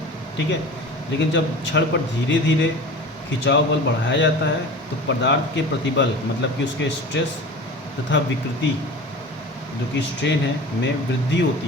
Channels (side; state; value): both; normal; correlation 0.36